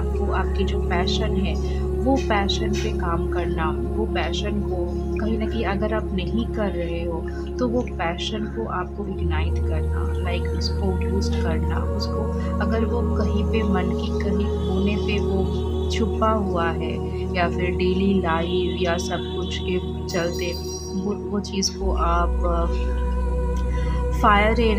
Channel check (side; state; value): both; identical; correlation 1.00